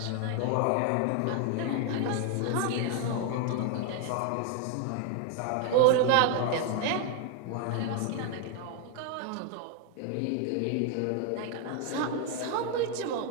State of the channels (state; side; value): different; both; correlation 0.00